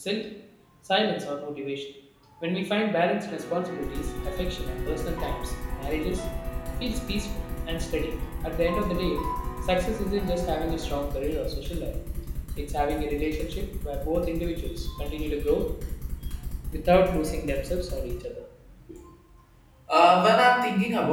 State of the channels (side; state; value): both; identical; correlation 1.00